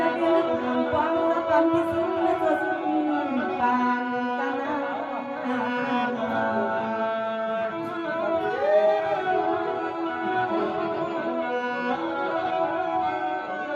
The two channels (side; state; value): both; identical; correlation 1.00